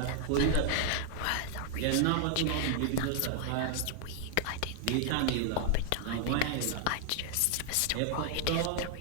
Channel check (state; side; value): different; both; correlation 0.00